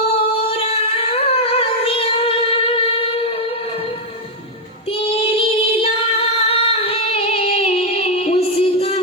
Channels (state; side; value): normal; both; correlation 0.02